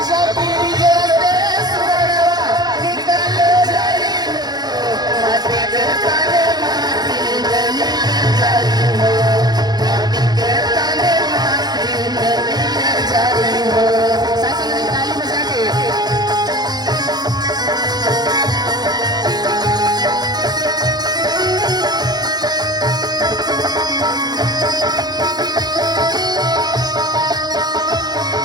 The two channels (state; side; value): late; left; 0.20 ms